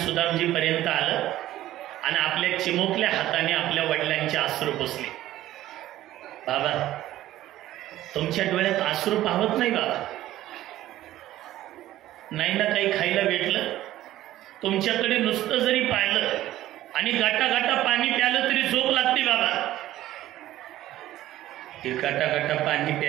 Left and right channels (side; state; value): left; quieter; 14.4 dB